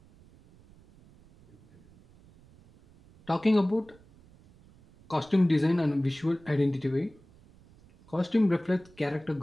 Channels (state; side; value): noise; right; rumble, 27 dB below the sound